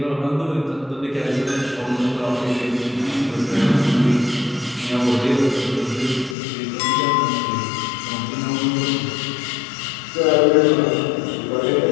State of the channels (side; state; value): right; drops out; at 6.4 s